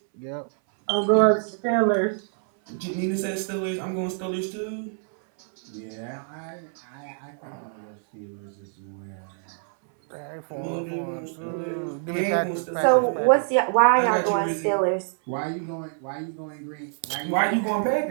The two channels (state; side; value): silent; left; 60 dB below the other